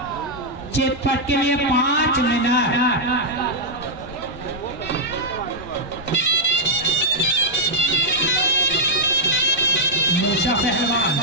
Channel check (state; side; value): normal; both; correlation -0.05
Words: चितपट के लिए 5 मिनट। मूसा पहलवान